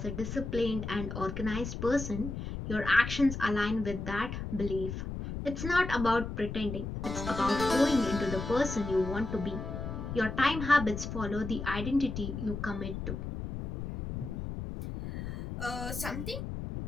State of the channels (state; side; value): noise; left; rumble, 6 dB below the sound